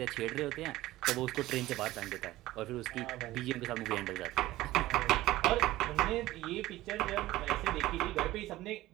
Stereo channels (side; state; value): left; quieter; 16.6 dB